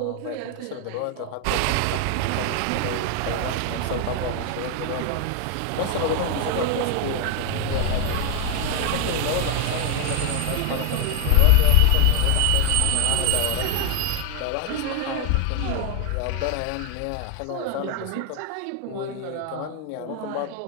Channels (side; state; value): both; different; correlation 0.00